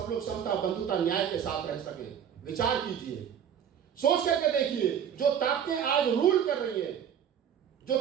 लोग समता, बंधुता, न्याय के साथ रह सके। विचार कीजिए, सोच करके देखिए, जो ताकतें आज रूल कर रही हैं, जो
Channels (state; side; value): quieter; left; 8.6 dB